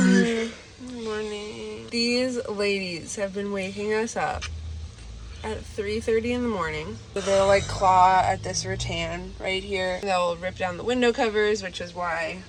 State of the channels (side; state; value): both; identical; correlation 1.00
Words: Good morning. These ladies have been waking us up at 3:30 in the morning. They'll like claw at this rattan right here. They'll rip down the window covers, which is why